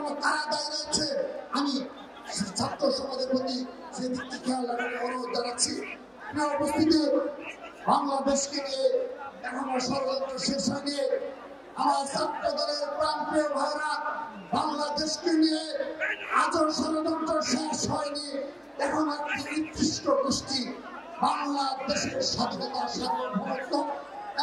কারা দায়ী রয়েছে। আমি ছাত্র সমাজের প্রতি সেই দিকটি খেয়াল রাখার অনুরোধ জানাচ্ছি। উপস্থিতি, বাংলাদেশকে নিয়ে এখনো ষড়যন্ত্র শেষ হয়নি। আমার ছাত্র দলের প্রান্তীয় ভাইরা, বাংলাদেশকে নিয়ে আজও ষড়যন্ত্র শেষ হয়নি। এখন একটি নির্দিষ্ট গোষ্ঠী বাংলাদেশের স্বাধীনতা, সার্বভৌমত্ব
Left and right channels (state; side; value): identical; both; correlation 1.00